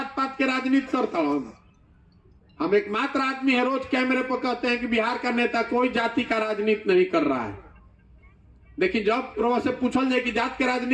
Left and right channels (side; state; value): both; identical; correlation 1.00